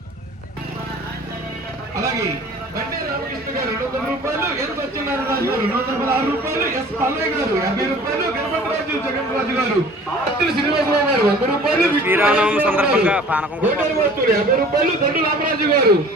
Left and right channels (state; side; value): normal; both; correlation 0.47